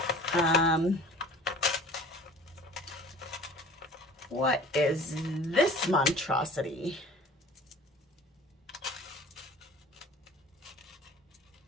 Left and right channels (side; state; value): both; normal; correlation 0.45